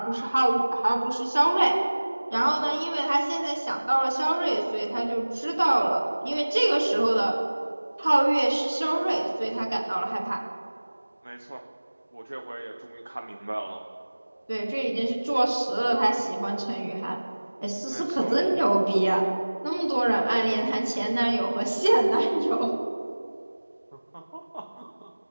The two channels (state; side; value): inverted; both; correlation -1.00